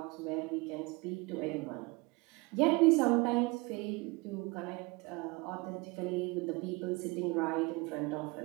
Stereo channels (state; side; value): quieter; left; 25.8 dB